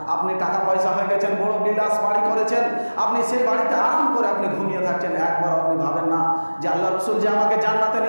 আপনি টাকা পয়সা হয়ে গেছেন, বড় বিলাস বাড়ি করেছেন, আপনি সেই বাড়িতে আরাম করে আপনি ঘুমিয়ে থাকছেন, একবার আপনি ভাবেন না যে আল্লাহ রাসূল যে আমাকে জান্নাতে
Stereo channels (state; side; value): inverted; both; correlation -1.00